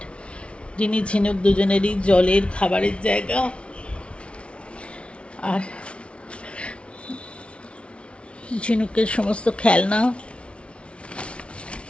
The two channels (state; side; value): late; right; 0.060 ms